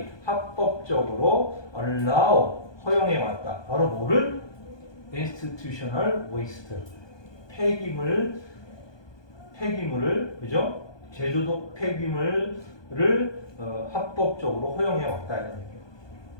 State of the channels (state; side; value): late; right; 1.2 ms